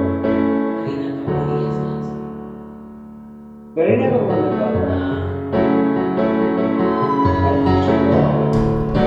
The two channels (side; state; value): both; identical; correlation 1.00